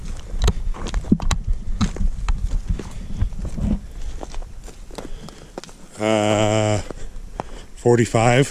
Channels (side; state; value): both; identical; correlation 1.00